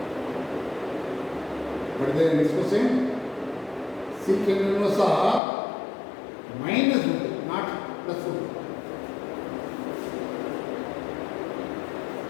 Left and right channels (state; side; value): drops out; right; at 5.4 s